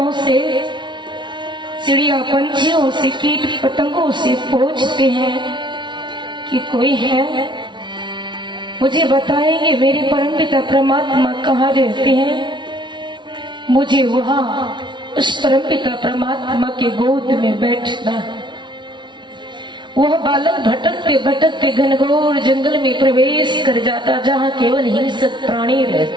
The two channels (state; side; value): late; left; 0.23 ms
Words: से, चिड़िया पंछियों से, कीट पतंगों से पूछते हैं कि कोई है, मुझे बताएंगे मेरे परमपिता परमात्मा कहाँ रहते हैं। मुझे वहां उस परमपिता परमात्मा के गोद में बैठना। वह बालक भटकते भटकते घनघोर जंगल में प्रवेश कर जाता, जहां केवल हिंसक प्राणी